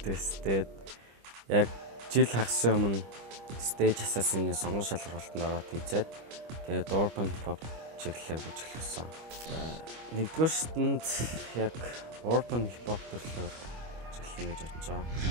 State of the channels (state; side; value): late; left; 25 ms